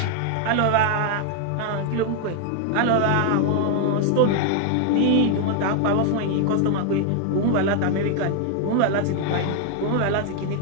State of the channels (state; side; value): different; both; correlation 0.00